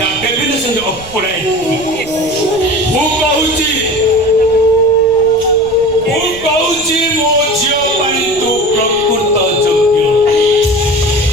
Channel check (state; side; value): noise; right; rumble, 18 dB below the sound